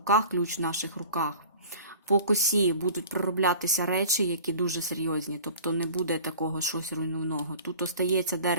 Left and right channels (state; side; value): inverted; both; correlation -0.43